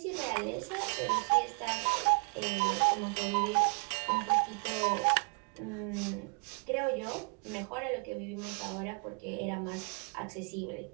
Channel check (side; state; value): left; quieter; 37.0 dB